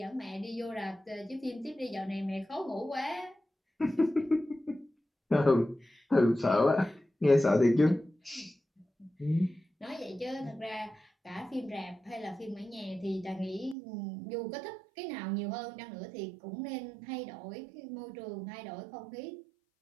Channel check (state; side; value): drops out; left; at 13.8 s